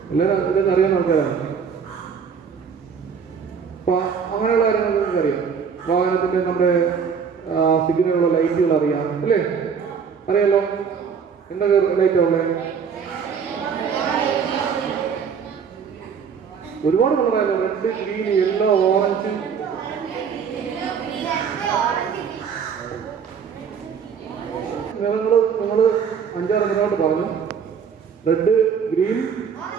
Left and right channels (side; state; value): left; quieter; 6.6 dB